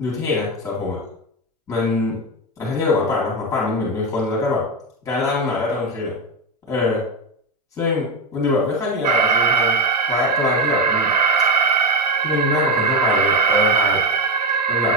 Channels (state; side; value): normal; both; correlation 0.11